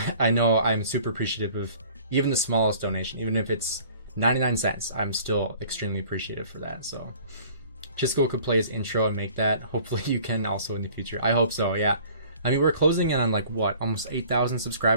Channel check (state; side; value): inverted; both; correlation -0.51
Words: know I'm super appreciative of even the smallest donation, even if it's 99 cents. I'm still extremely appreciative for that. So chisgule could play his intro and make that. Hopefully you can also in the future. I hope so. Yeah, I mean, we're closing in on like what, almost 8,000